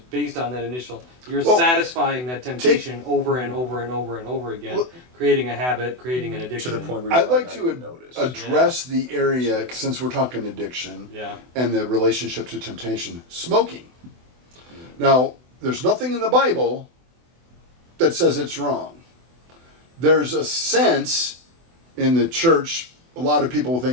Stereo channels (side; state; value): left; late; 24 ms